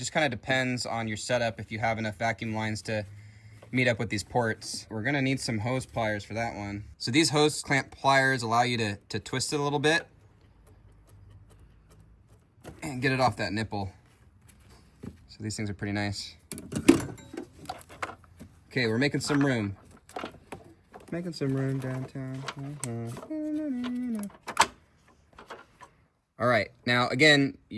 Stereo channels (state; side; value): identical; both; correlation 1.00